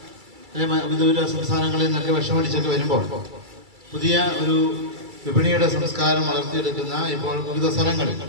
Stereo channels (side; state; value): left; late; 2.3 ms